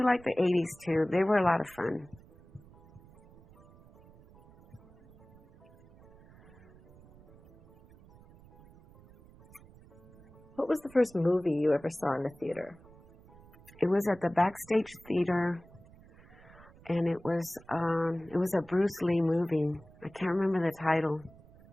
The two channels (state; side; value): noise; right; rumble, 24 dB below the sound